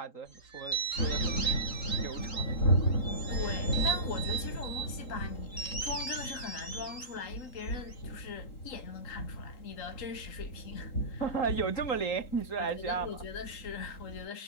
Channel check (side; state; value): right; late; 3.8 ms